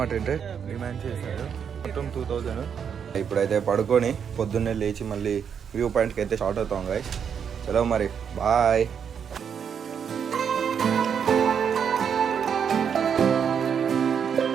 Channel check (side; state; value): left; quieter; 7.4 dB